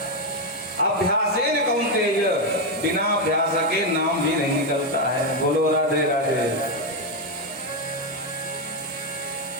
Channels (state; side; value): normal; both; correlation 0.05